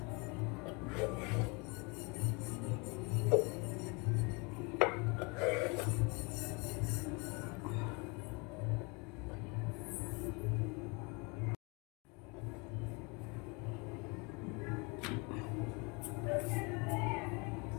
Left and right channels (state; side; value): quieter; right; 29.7 dB